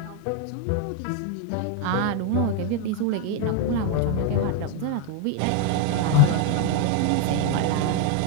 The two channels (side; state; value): both; different; correlation 0.01